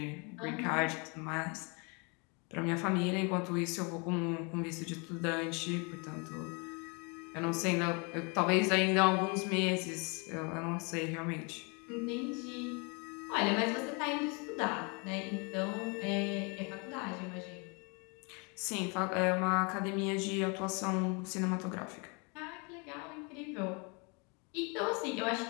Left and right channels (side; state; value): right; quieter; 32.4 dB